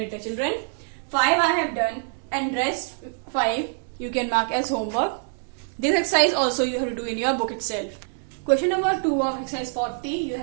Children, 5 I have done and rest 5 you can mark as homework. This exercise also you have to do in your book itself. Question number 2 of exercise 40 you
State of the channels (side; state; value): left; silent; digital silence